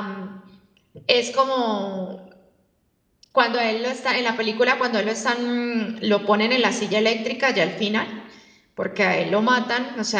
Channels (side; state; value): both; identical; correlation 1.00